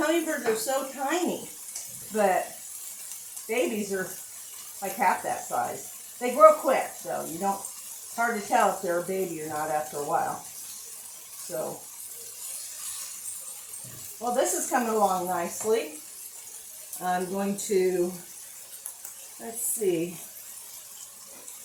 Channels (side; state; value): both; identical; correlation 1.00